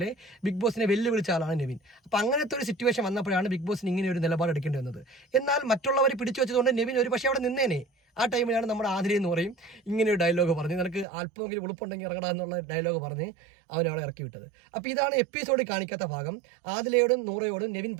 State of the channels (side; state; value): left; drops out; at 11.1 s